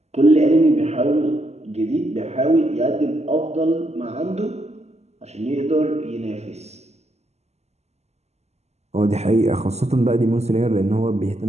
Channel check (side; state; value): left; late; 0.32 ms